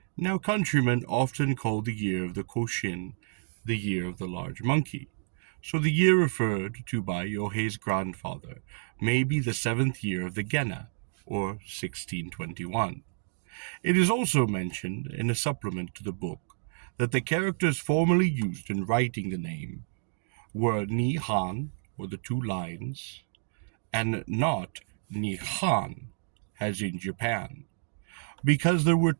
Now countrymen often call the year of the Koshin the year of the large monkey, so the year referred to by Yohei's grandfather may be the 7th year of the Gena, or 1621. It is also mentioned in a supplement to the book that the characters formerly used in writing the name were Nihan, or the 2 lines, and not Nihan, as in Japan, because there were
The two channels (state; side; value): silent; left; digital silence